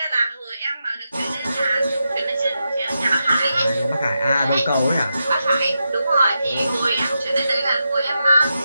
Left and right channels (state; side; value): inverted; both; correlation -0.87